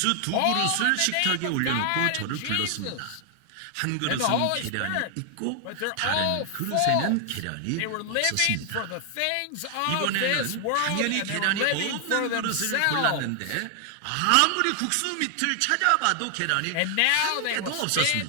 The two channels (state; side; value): different; both; correlation 0.00